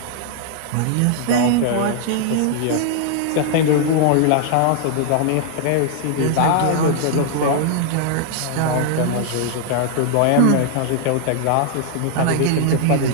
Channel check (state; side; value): different; both; correlation 0.00